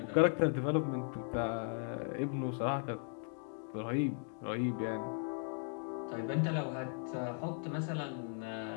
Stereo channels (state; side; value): silent; right; 53 dB below the other